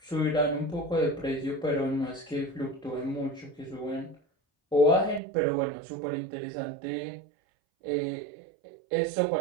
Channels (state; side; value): drops out; left; at 5.2 s